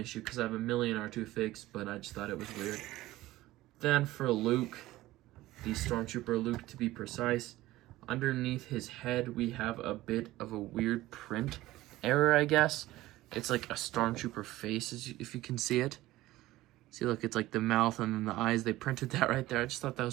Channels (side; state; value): left; quieter; 16.9 dB